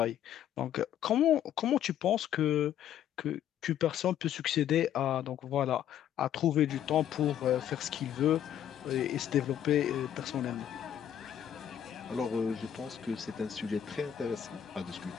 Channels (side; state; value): right; quieter; 10.2 dB